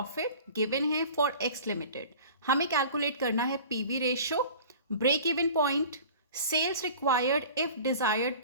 गिवन है फॉर एक्स लिमिटेड। हमें कैलकुलेट करना है PV ratio, break even point, sales required if desired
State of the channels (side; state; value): both; inverted; correlation -0.42